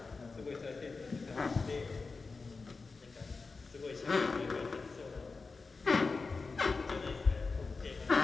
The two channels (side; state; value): right; quieter; 4.2 dB